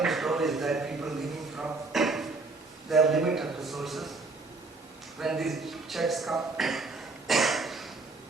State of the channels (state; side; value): quieter; left; 3.6 dB